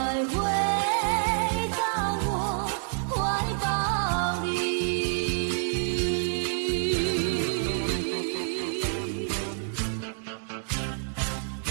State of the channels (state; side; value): silent; left; digital silence